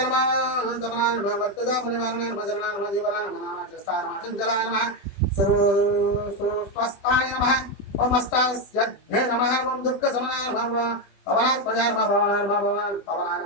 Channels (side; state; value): right; late; 20 ms